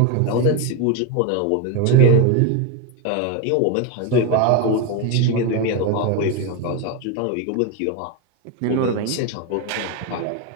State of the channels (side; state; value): both; different; correlation 0.02